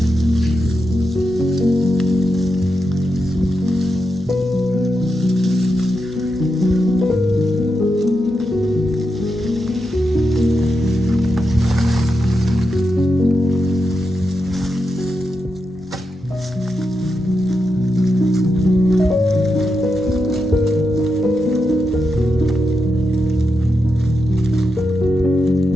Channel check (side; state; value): both; normal; correlation 0.86